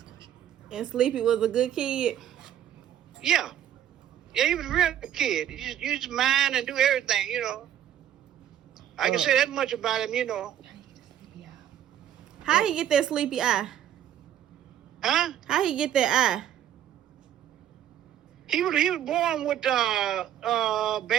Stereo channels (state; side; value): quieter; left; 10.8 dB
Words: And Sleepy was a good kid. Yeah. Yeah, he was a real good kid. He just used his mind and do everything, you know. I can say that much about him, you know. How he get that sleepy eye? Huh? How he get that eye? He was born with bad